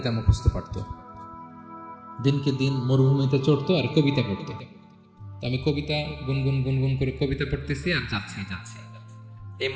মুখস্থ পারত। দিনকে দিন মরুভূমিতে চড়তো আর কবিতা পড়তো। আমি কবিতা গুনগুন গুনগুন করে কবিতা পড়তেছি আর যাচ্ছি। এই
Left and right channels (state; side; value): identical; both; correlation 1.00